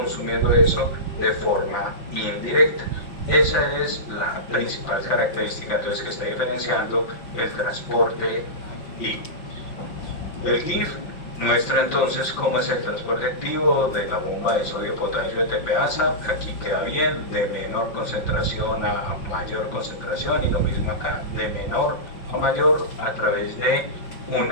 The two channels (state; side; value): late; right; 5.6 ms